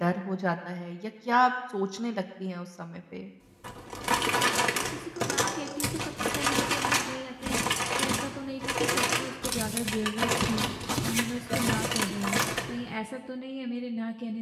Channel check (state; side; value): identical; both; correlation 1.00